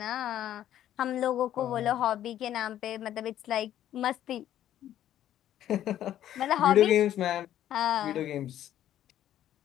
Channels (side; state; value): right; quieter; 11.8 dB